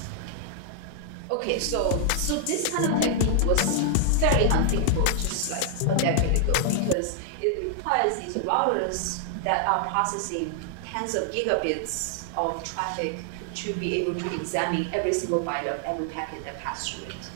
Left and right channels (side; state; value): both; different; correlation 0.00